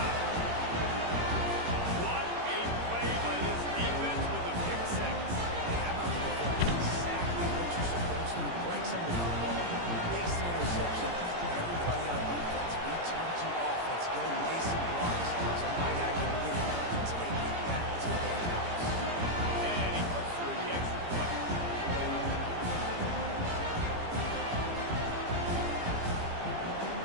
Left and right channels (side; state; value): left; late; 18 ms